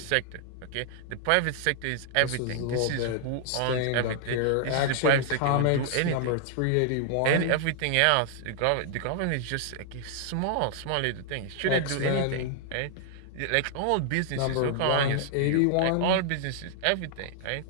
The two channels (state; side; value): different; both; correlation -0.01